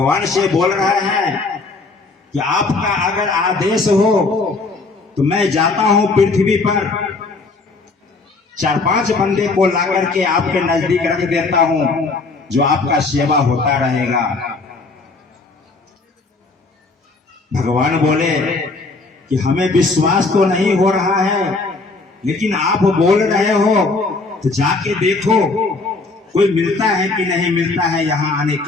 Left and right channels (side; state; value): right; quieter; 3.7 dB